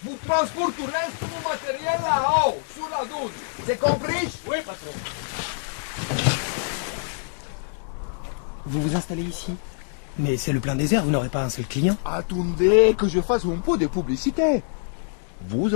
Vous transporterez tout mon matériel là-haut, sur la douche. C'est compris? Oui, patron. Vous vous installez ici? Mais c'est le plein désert, vous n'aurez pas un seul client. Attendez que je fasse un peu de publicité. Vous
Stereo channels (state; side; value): silent; right; digital silence